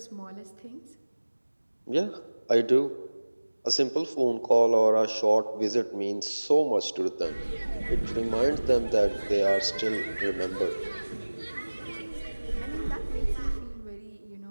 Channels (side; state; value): both; inverted; correlation -1.00